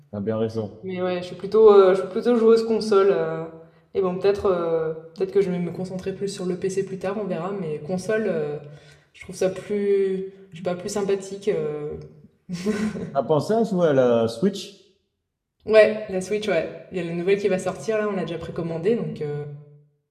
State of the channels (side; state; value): both; identical; correlation 1.00